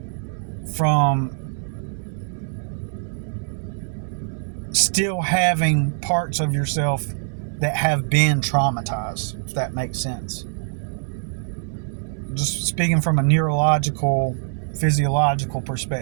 from still having parts of yourself that have been traumatized, if that makes sense. Just speaking from a neurological, physiological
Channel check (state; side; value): silent; left; 63 dB below the other